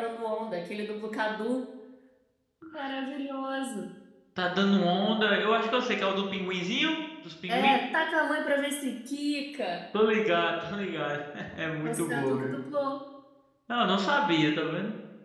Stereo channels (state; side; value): identical; both; correlation 1.00